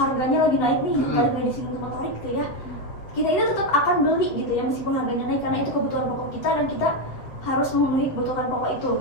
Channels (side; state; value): right; late; 7.6 ms